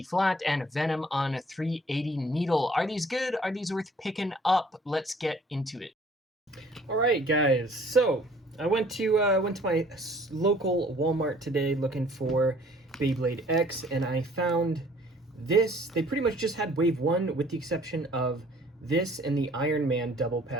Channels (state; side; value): normal; both; correlation 0.56